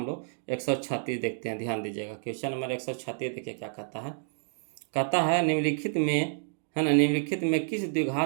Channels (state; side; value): silent; left; digital silence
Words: लोग 136 देखते हैं, ध्यान दीजिएगा। क्वेश्चन नंबर 136 देखिए क्या कहता है। कहता है निम्नलिखित में, है ना, निम्नलिखित में किस